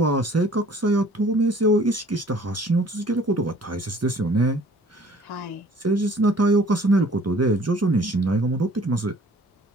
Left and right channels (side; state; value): both; normal; correlation 0.53